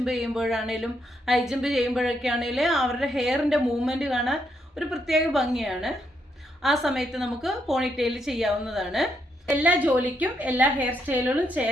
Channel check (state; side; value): normal; both; correlation 0.77